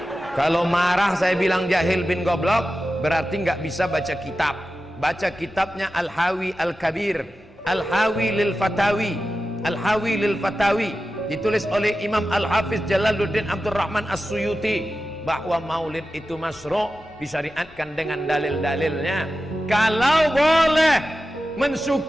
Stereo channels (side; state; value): both; normal; correlation 0.93